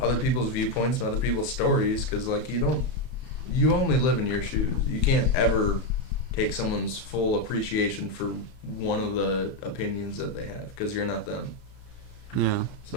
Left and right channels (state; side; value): late; right; 31 ms